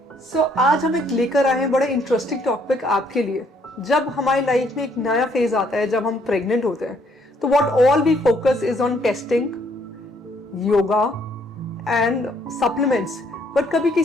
So आज हम एक लेकर आए हैं बड़ा interesting topic आपके लिए। जब हमारी लाइफ में एक नया फेज आता है, जब हम प्रेग्नेंट होते हैं, तो what all we focus is on testing, yoga and supplements. But कभी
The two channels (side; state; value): both; normal; correlation 0.67